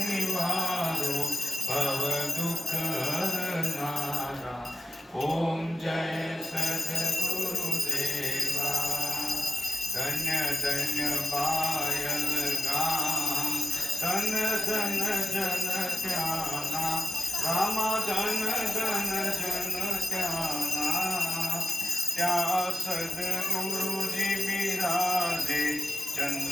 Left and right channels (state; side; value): normal; both; correlation 0.94